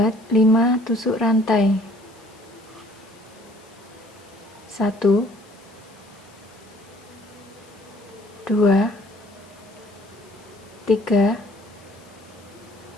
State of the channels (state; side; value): noise; left; hiss, 27 dB below the sound